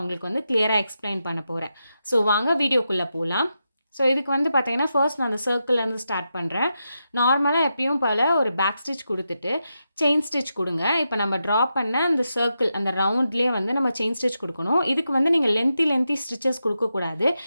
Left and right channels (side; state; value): both; inverted; correlation -0.87